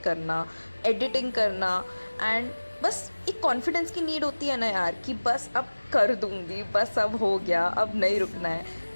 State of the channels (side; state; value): both; inverted; correlation -1.00